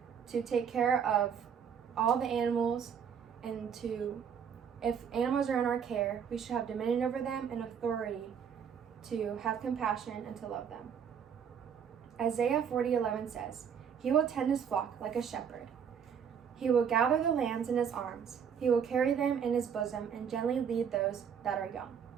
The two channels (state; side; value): quieter; left; 7.6 dB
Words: to take care of all the animals, and if animals are in our care, we should have dominion over them and authority to have compassion and to love them. Isaiah 40:11 says, "He will tend his flock like a shepherd. He will gather the lambs in his arms. He will carry them in his bosom and gently lead those that are young."